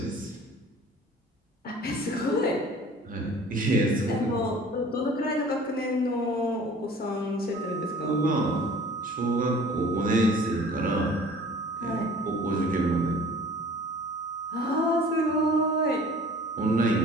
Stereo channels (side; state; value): both; normal; correlation 0.47